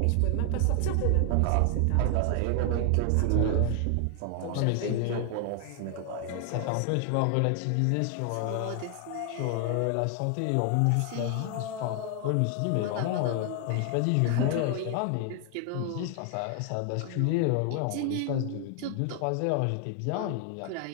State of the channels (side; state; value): both; different; correlation 0.00